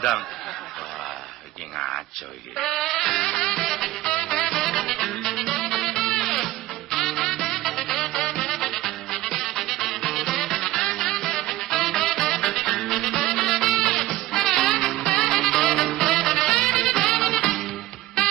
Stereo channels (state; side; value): quieter; left; 16.7 dB